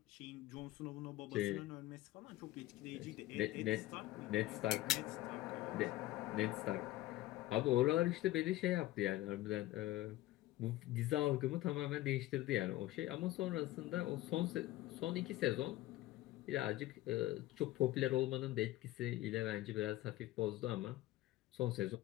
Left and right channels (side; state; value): right; quieter; 16.3 dB